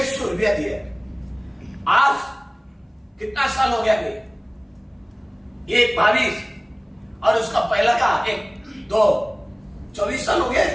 रुपया दिया। आज कितना साल हो गया? ये 22 और उसका पहला का 1 2 24 साल हो गए,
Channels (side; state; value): both; identical; correlation 1.00